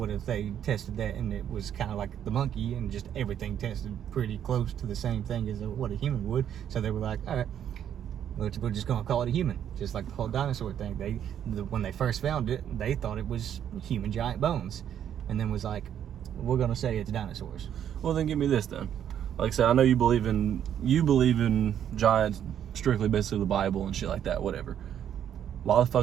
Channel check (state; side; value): quieter; left; 9.7 dB